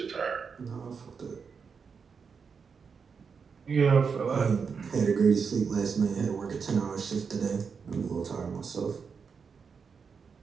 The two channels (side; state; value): left; quieter; 5.8 dB